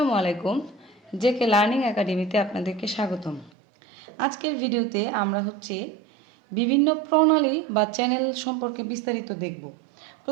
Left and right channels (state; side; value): drops out; left; at 3.5 s